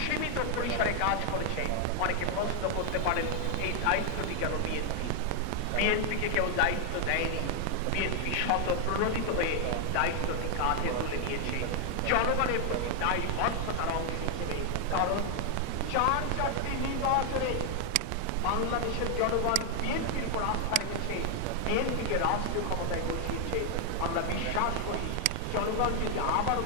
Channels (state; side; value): different; both; correlation 0.00